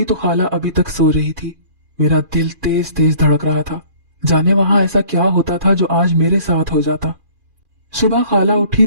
तो खाला अभी तक सो रही थी। मेरा दिल तेज तेज धड़क रहा था। जाने वहां ऐसा क्या होता था जो आज मेरे साथ हो जाता। सुबह खाला उठी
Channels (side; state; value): left; late; 2.4 ms